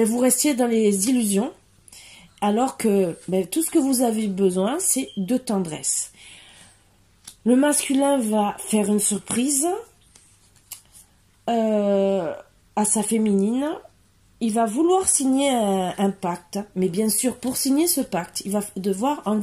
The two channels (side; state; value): both; identical; correlation 1.00